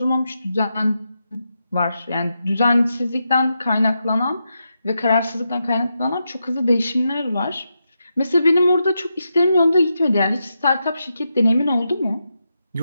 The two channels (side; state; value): both; inverted; correlation -0.86